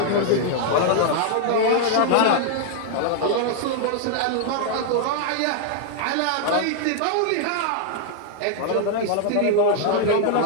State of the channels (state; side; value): different; both; correlation 0.00